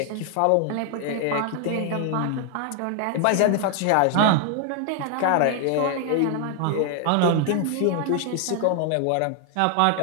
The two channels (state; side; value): different; both; correlation 0.00